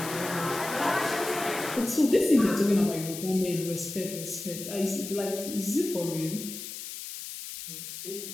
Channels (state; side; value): noise; left; hiss, 9 dB below the sound